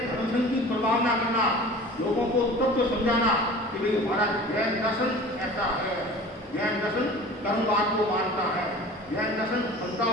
धर्म संघ की प्रभावना करना, लोगों को तत्व समझाना कि भाई हमारा जैन दर्शन ऐसा है। जैन दर्शन कर्मवाद को मानता है, जैन दर्शन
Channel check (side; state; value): both; normal; correlation 0.41